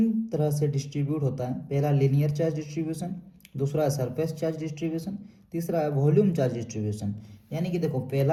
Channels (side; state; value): both; identical; correlation 1.00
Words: तरह से डिस्ट्रीब्यूट होता है। पहला लीनियर चार्ज डिस्ट्रीब्यूशन, दूसरा है सरफेस चार्ज डिस्ट्रीब्यूशन, तीसरा है वॉल्यूम चार्ज डिस्ट्रीब्यूशन। यानी कि देखो, पहला